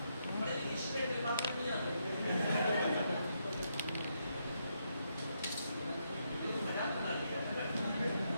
बड़े इंग्लिश में दिमाग में नहीं आता। मजाक बना दिया।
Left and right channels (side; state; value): both; inverted; correlation -0.79